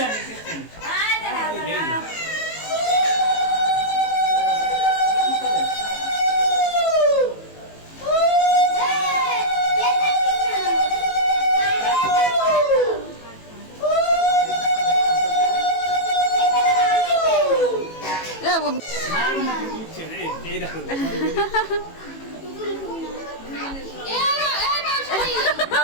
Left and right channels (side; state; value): right; late; 18 ms